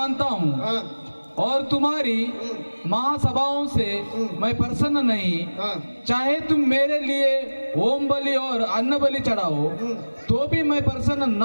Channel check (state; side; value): inverted; both; correlation -1.00